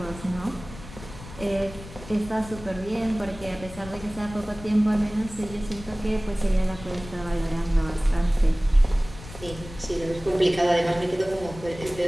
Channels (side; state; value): left; noise; rumble, 15 dB below the sound